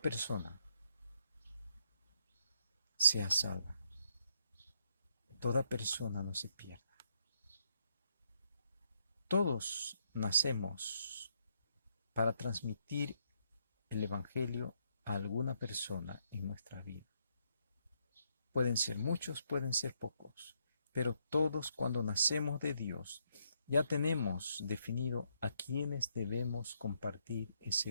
sea salva. Toda persona no se pierda. Todos nacemos para transmitir el Evangelio a alguna persona en nuestra vida. Pueden ser muchos, pueden ser pocos, pero todos cuando nacemos de Dios ya tenemos definido a quienes debemos compartir ese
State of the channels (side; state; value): both; inverted; correlation -0.74